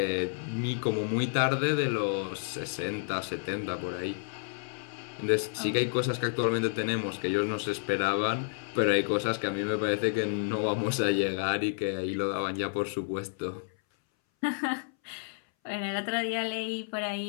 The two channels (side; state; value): right; silent; 58 dB below the other